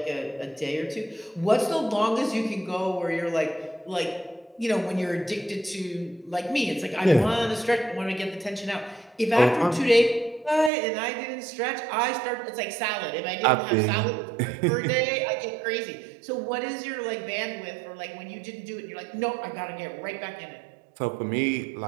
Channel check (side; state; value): left; drops out; at 10.7 s